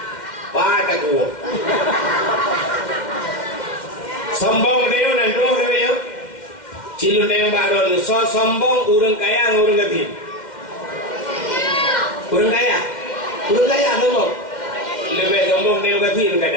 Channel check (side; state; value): right; late; 2.1 ms